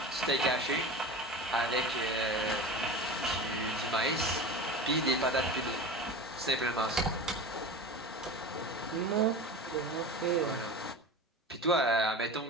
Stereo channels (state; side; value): normal; both; correlation 0.31